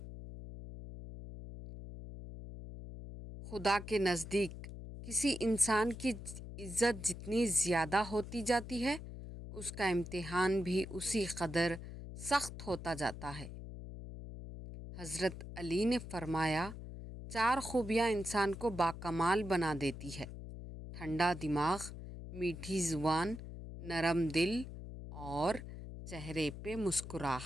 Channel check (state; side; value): noise; left; hum, 10 dB below the sound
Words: خدا کے نزدیک کسی انسان کی عزت جتنی زیادہ ہوتی جاتی ہے، اس کا امتحان بھی اسی قدر سخت ہوتا جاتا ہے۔ حضرت علی نے فرمایا، 4 خوبیاں انسان کو باکمال بنا دیتی ہے: ٹھنڈا دماغ، میٹھی زبان، نرم دل اور چہرے پہ